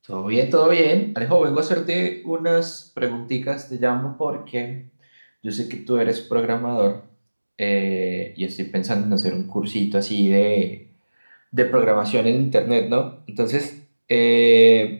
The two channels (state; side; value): inverted; both; correlation -1.00